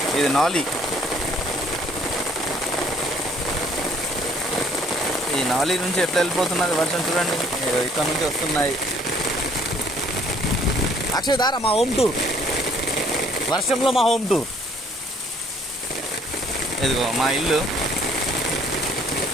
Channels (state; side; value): normal; both; correlation 0.60